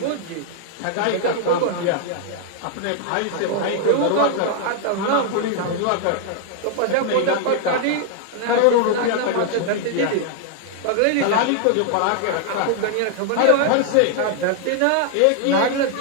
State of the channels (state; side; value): different; both; correlation 0.00